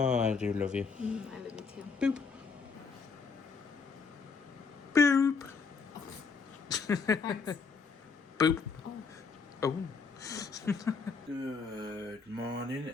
I do love you. I love you too. Boop. Boop. Thanks. Boop. Oh. Oh. Good morning,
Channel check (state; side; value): quieter; right; 5.0 dB